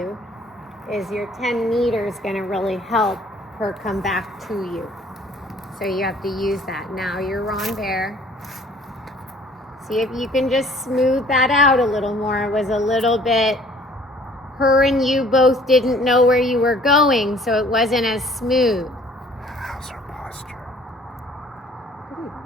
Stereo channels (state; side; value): normal; both; correlation 0.55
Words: is your 10 meters going to really help her come back to you. So you have to use that. Now your renvers. See if you can just smooth that out a little more. It was a little bit, her and you both didn't know where you were going, so it wasn't as smooth. How's her posture? Pretty